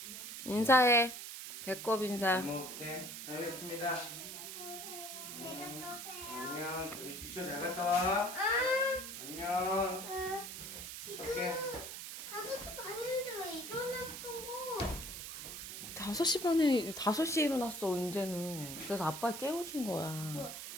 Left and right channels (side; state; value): right; noise; hiss, 8 dB below the sound